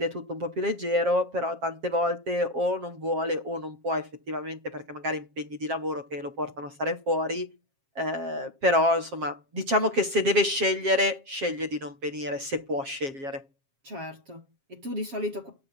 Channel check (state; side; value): late; left; 7.4 ms